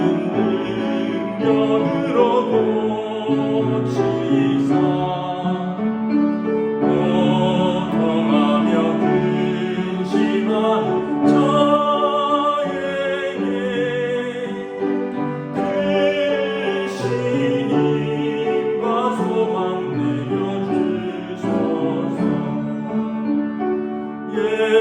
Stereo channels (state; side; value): identical; both; correlation 1.00